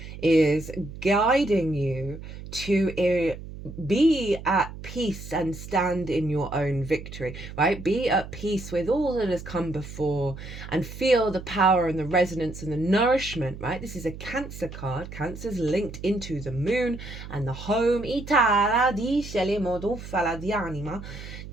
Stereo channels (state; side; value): noise; right; hum, 12 dB below the sound